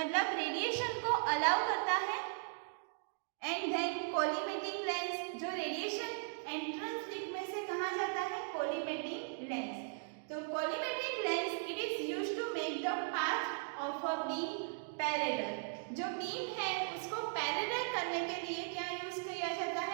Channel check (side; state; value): left; silent; digital silence